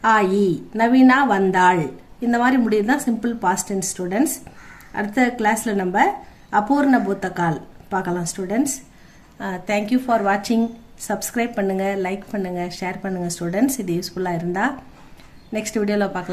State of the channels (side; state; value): both; identical; correlation 1.00